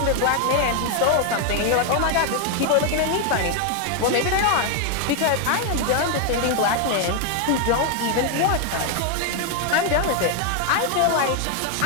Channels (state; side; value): different; both; correlation 0.01